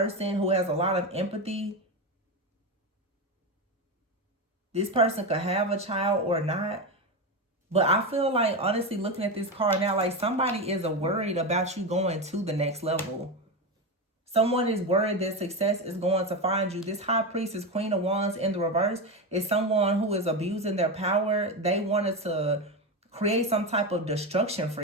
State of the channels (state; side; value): normal; both; correlation 0.16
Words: who has a lot of empathy. This person could have a child or not. But I feel like, honestly, looking at this card now, like somebody is worried about you going to the next level. Someone is worried that success is going to find you. This High Priestess, Queen of Wands in the reverse, is someone who is abusing their power. They wanted to create some type of destruction for